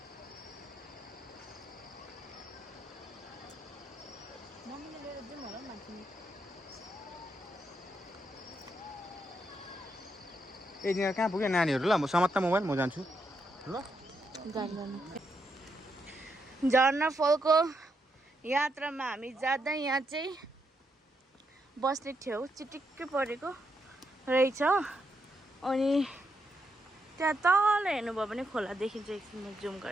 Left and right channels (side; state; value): both; normal; correlation 0.80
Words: ए कहाँ पुग्यो नानीहरू ल म समात्ता मोबाइल म जान्छु ल झर्ना फलको यात्रामा हामी जाँदा यहाँ चाहिँ बस्ने ठाउँ चिटिक्कै परेको रहेछ अनि त्यहाँ तल हेर्नुभयो भने खोला देखिन्छ एकछिन म जुम